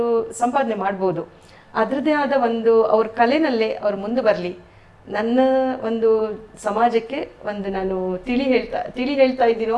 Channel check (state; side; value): identical; both; correlation 1.00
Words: ಸಂಪಾದನೆ ಮಾಡ್ಬೋದು. ಅದರದ್ದೇ ಆದ ಒಂದು ಅವ್ರ ಕಲೆನಲ್ಲೇ ಅವ್ರು ಮುಂದೆ ಬರಲಿ. ನನ್ನ ಒಂದು ಸಮಾಜಕ್ಕೆ ಒಂದು ನಾನು ತಿಳಿ ಹೇಳ್ತಾ